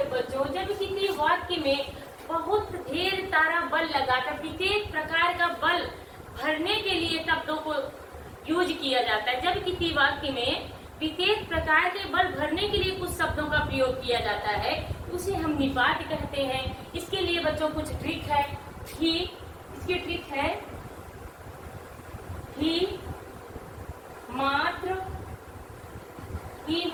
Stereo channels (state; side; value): identical; both; correlation 1.00